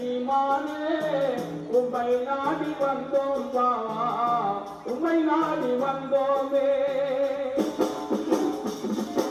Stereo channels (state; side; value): identical; both; correlation 1.00